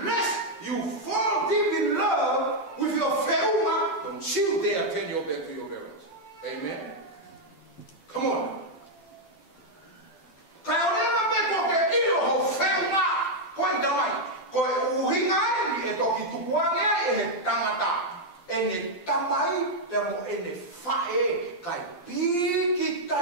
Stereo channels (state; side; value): late; right; 11 ms